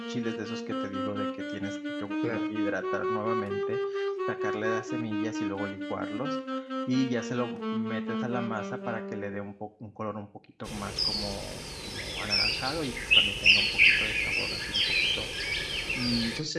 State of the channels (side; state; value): both; identical; correlation 1.00